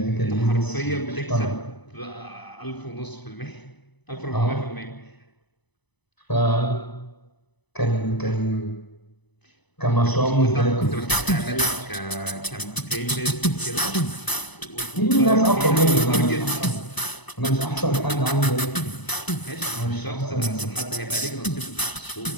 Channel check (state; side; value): late; right; 1.0 ms